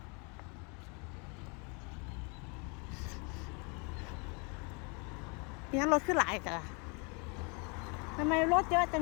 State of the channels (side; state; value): right; quieter; 33.2 dB